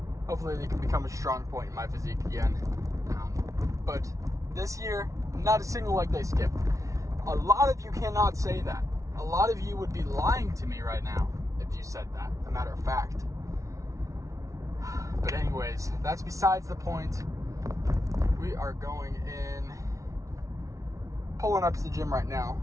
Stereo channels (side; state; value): left; late; 0.16 ms